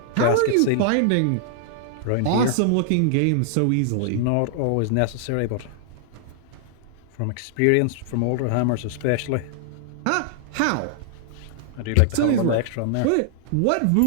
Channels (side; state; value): both; different; correlation -0.01